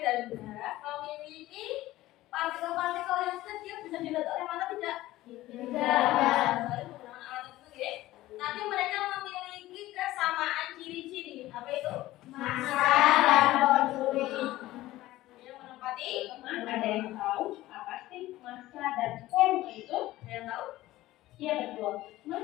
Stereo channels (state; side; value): quieter; right; 16.4 dB